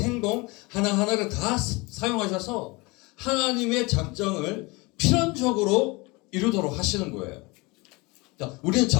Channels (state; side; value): quieter; right; 25.1 dB